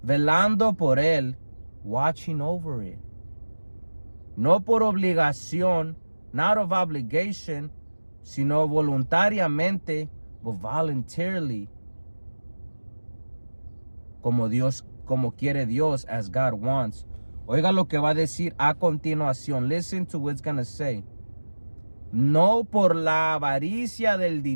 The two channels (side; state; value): both; inverted; correlation -1.00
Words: velando por él, watching over it. No por obligación, not of obligation, sino voluntariamente, but voluntarily, como quiere Dios, as God wants. Oiga lo que va a decir a continuación. Listen to what it's going to say. No por la avaricia del